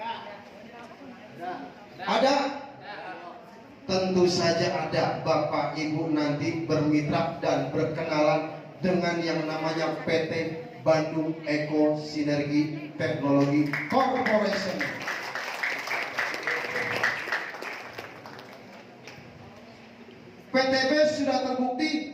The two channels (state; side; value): identical; both; correlation 1.00